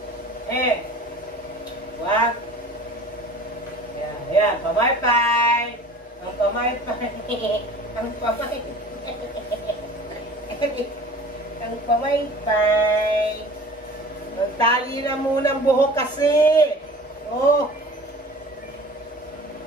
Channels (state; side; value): normal; both; correlation 0.43